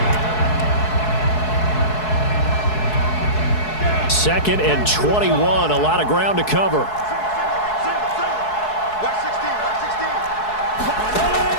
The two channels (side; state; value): right; late; 4.7 ms